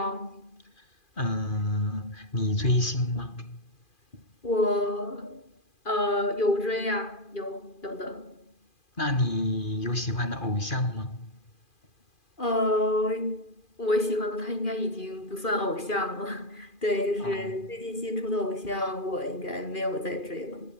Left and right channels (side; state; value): right; late; 2.4 ms